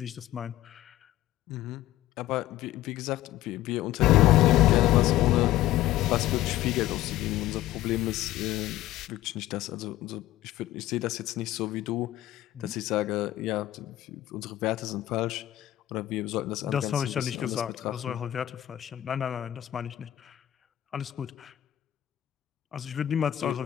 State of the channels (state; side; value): quieter; right; 14.2 dB